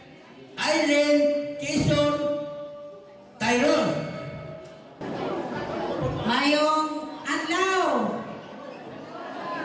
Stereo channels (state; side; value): identical; both; correlation 1.00